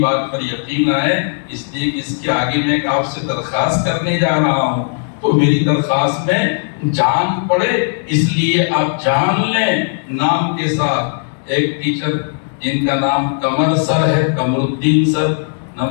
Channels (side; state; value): right; silent; digital silence